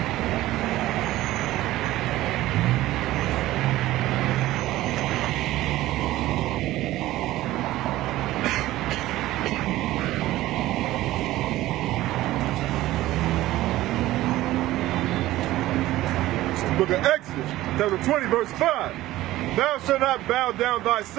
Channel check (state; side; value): quieter; left; 16.0 dB